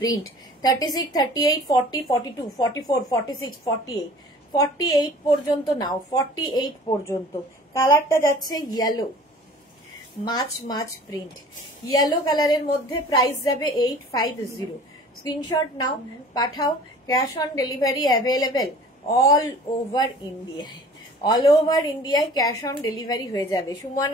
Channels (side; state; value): both; normal; correlation 0.47